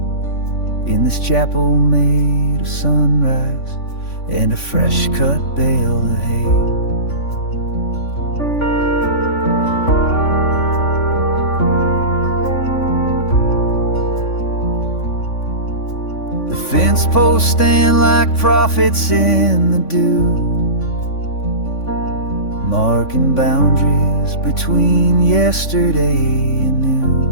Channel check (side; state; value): right; late; 3.5 ms